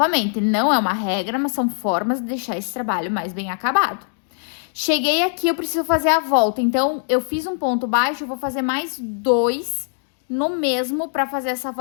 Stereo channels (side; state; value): right; silent; digital silence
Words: não é uma regra, mas são formas de deixar esse trabalho mais bem acabado. Cheguei aqui, eu preciso fazer a volta. Então, eu fiz um ponto baixo, eu vou fazer mais 2 no mesmo para fazer essa